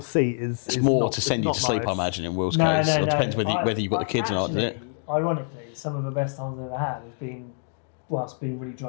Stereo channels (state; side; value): silent; right; 61 dB below the other